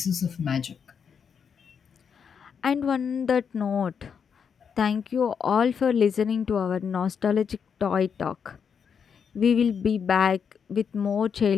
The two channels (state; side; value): quieter; right; 6.8 dB